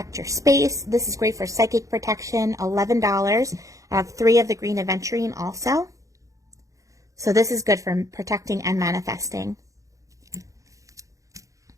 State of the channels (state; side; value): late; left; 0.16 ms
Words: your space. This is great for psychic protection, $11. I have 3 of the green aventurine also. So this is good for protecting and manifesting.